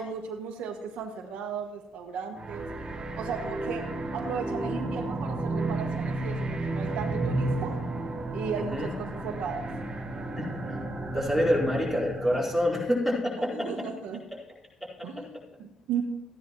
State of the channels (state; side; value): normal; both; correlation 0.80